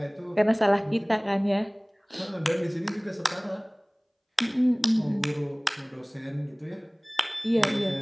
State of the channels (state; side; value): identical; both; correlation 1.00